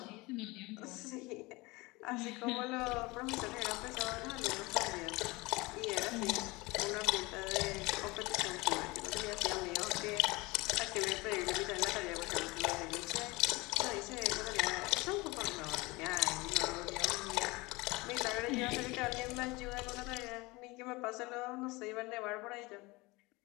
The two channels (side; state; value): right; quieter; 23.3 dB